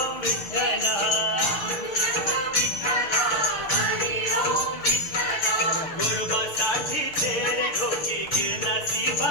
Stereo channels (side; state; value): right; late; 6.7 ms